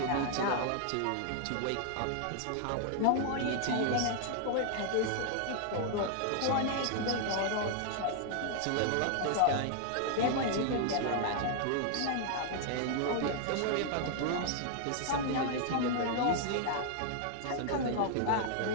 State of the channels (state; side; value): different; both; correlation 0.00